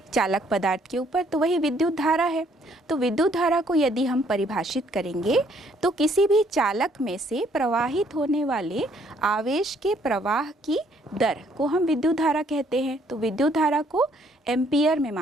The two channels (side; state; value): both; normal; correlation 0.65